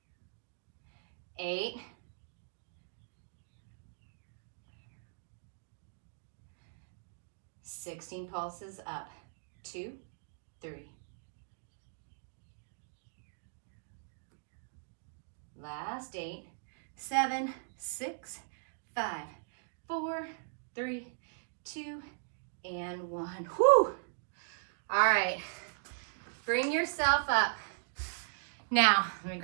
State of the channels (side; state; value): left; silent; digital silence